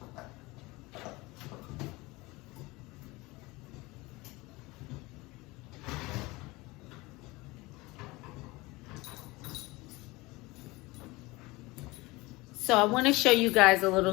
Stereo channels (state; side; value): quieter; right; 22.3 dB